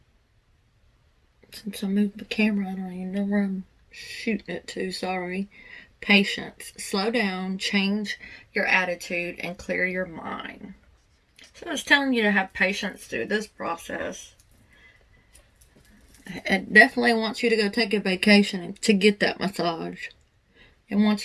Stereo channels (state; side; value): identical; both; correlation 1.00